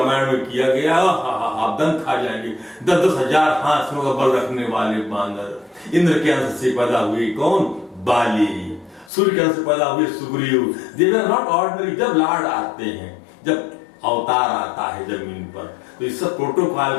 में किया गया। आप दंत खा जाएंगे। 10,000 हाथियों का बल रखने वाले बानर। इंद्र के अंश से पैदा हुए कौन? बाली। सूर्य के अंश से पैदा हुए सुग्रीव। दे वर नॉट ऑर्डिनरी। जब लॉर्ड आते हैं, जब अवतार आता है जमीन पर, तो इस सब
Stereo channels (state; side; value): drops out; right; at 9.1 s